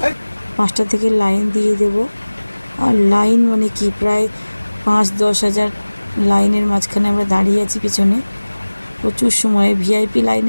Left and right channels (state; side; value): inverted; both; correlation -1.00